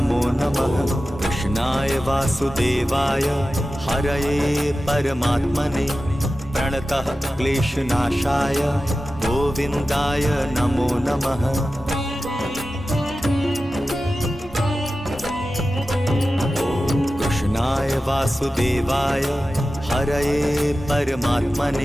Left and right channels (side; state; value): both; normal; correlation 0.94